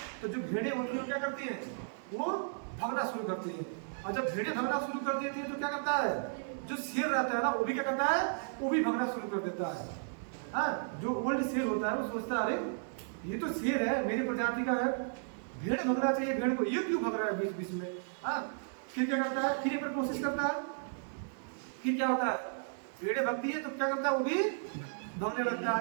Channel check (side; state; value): left; silent; digital silence